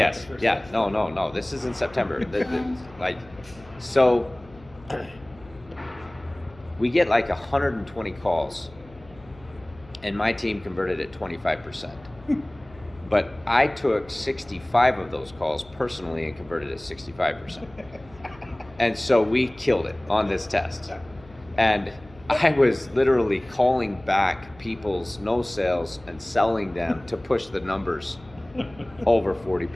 the first yeah, test. no. This is in September. Like, so we get like 120 calls, and my team converted at 25%. But I took 65 of those calls personally and converted at 65%. And so we killed it on this test. And I was literally calling back people's no sales and selling them to push the numbers over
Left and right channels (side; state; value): left; noise; hum, 23 dB below the sound